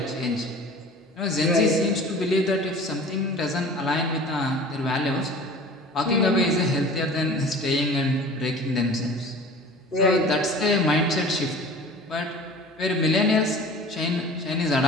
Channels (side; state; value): both; normal; correlation 0.42